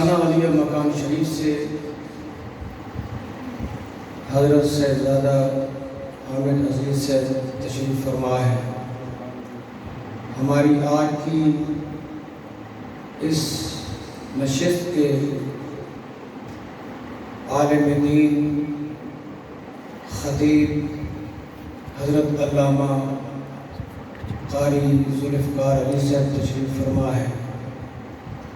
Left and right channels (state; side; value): identical; both; correlation 1.00